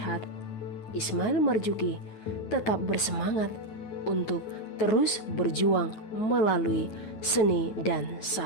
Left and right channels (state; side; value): late; right; 9.3 ms